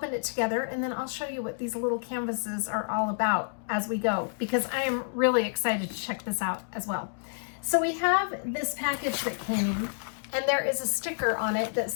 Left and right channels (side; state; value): right; silent; digital silence